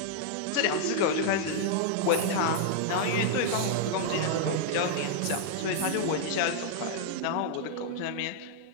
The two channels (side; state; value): both; different; correlation -0.01